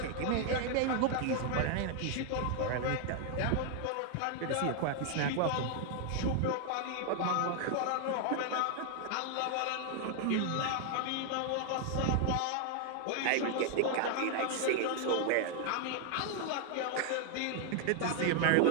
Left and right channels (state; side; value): different; both; correlation 0.00